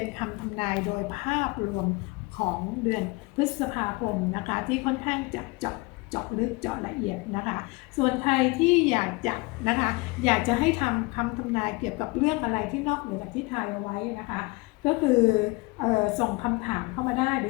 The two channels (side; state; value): right; quieter; 25.2 dB